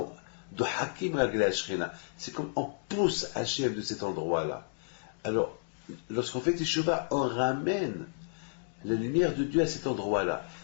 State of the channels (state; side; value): silent; right; digital silence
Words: de Hakim Ragla Shrena, c'est comme on pousse Hachem de cet endroit-là. Alors, lorsqu'on fait Teshuvah, on ramène la lumière de Dieu à cet endroit-là.